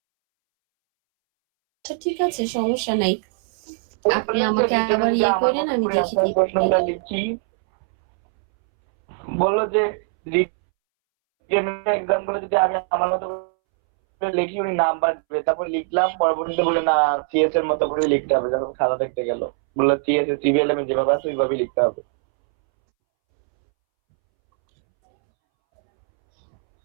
আচ্ছা, ঠিক আছে, সমস্যা নাই। আপনি আমাকে আবার আমার করেন, মতো আমি করে দেখে আপনার দিচ্ছি। প্রশ্নটা লিখি। বললো যে রিটেনের এক্সাম গুলো যদি আমি আমার মতো করে লিখি উনি নাম্বার দেবে, তারপর লিখলাম, পরবর্তীতে বলে না সিএস এর মতো করে লিখতে হবে। যখন খাতা দেখতে গেল বললো সিএস এর সিবিএল এ যেভাবে আছে ওইভাবেই লিখতে হবে।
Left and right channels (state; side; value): silent; left; 65 dB below the other